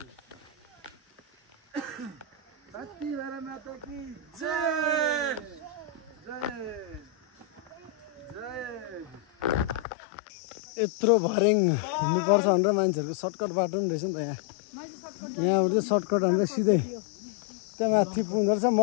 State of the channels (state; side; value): drops out; right; at 9.9 s